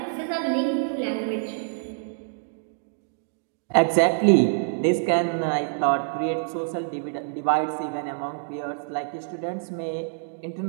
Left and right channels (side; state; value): left; silent; digital silence